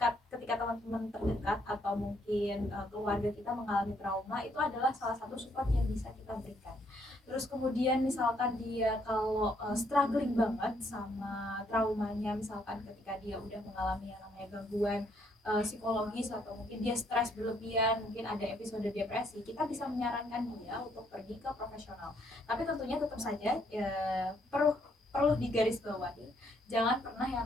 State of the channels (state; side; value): normal; both; correlation 0.70